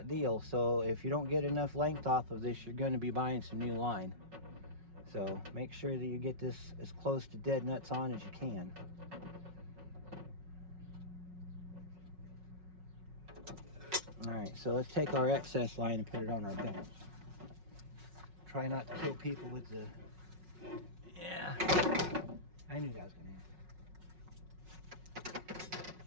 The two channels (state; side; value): late; left; 5.4 ms